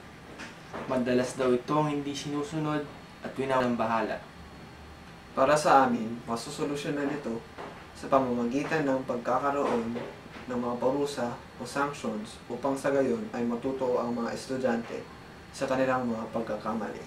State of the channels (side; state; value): both; identical; correlation 1.00